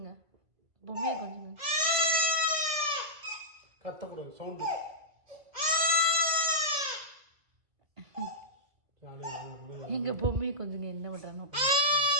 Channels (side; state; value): left; late; 1.9 ms